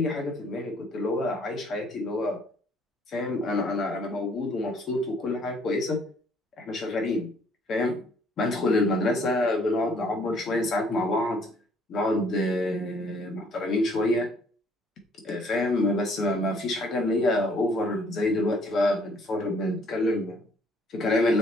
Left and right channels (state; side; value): normal; both; correlation 0.62